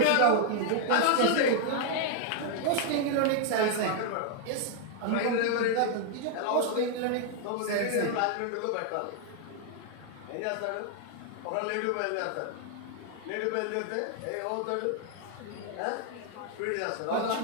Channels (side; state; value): both; different; correlation 0.00